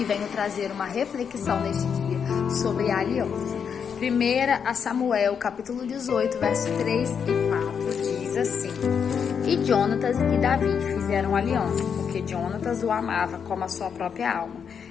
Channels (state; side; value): quieter; right; 7.0 dB